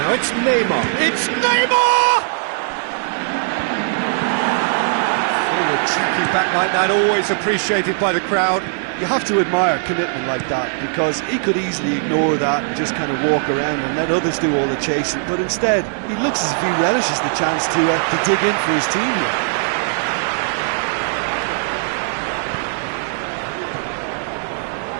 it's Neymar. It's Neymar! Forward tracking back like that, always appreciated by the crowd. You have to admire commitment like that, because he could easily ignore that and just kind of walk around and let others do all the chasing. But instead, he looks as if he relishes the chance to dig in for his team here.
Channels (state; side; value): silent; left; 66 dB below the other